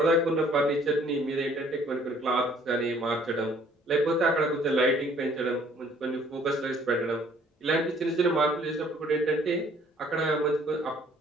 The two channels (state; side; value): normal; both; correlation 0.59